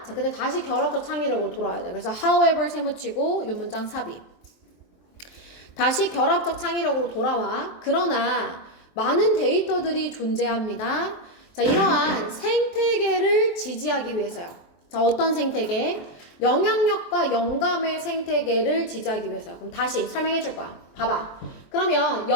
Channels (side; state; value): right; late; 23 ms